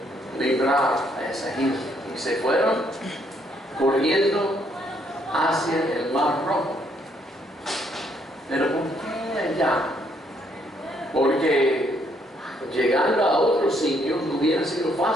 librar a esa gente. Y se fueron corriendo hacia el Mar Rojo. Pero ¿por qué allá? Porque llegando a otros sitios hubiera sido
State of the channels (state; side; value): normal; both; correlation 0.70